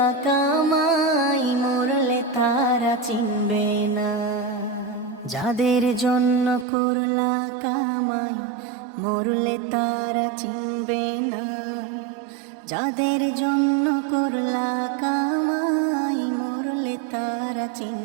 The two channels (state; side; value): drops out; left; at 6.7 s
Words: কামাই মরলে তারা চিনবে না। যাদের জন্য করলা কামাই মরলে তারা চিনবে না। যাদের জন্য করলা কামাই মরলে তারা